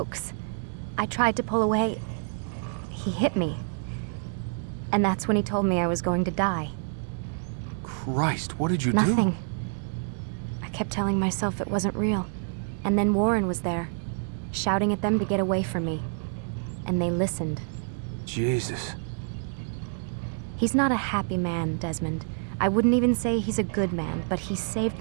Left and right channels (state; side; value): silent; left; digital silence